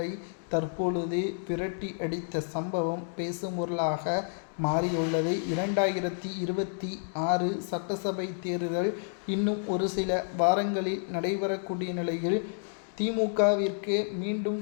தற்பொழுது விரட்டி அடித்த சம்பவம் பேசும் பொருளாக மாறியுள்ளது. 2026 சட்டசபை தேர்தல் இன்னும் ஒரு சில வாரங்களில் நடைபெறக்கூடிய நிலையில் திமுகவிற்கு மீண்டும்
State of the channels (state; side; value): silent; right; digital silence